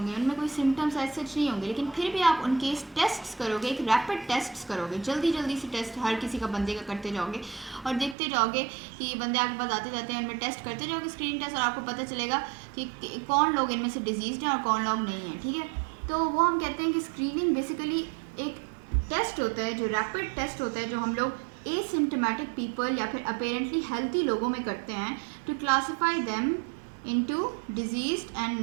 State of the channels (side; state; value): left; drops out; at 8.2 s